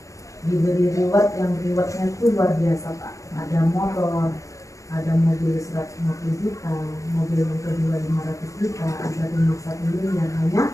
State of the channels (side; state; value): right; late; 0.15 ms